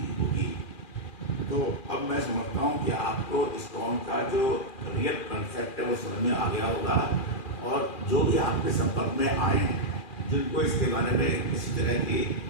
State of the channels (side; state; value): right; late; 2.4 ms